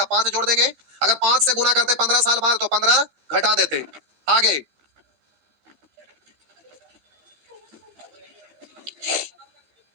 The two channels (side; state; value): left; late; 15 ms